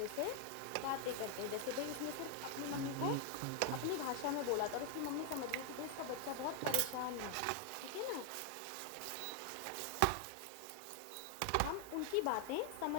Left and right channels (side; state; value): both; different; correlation 0.00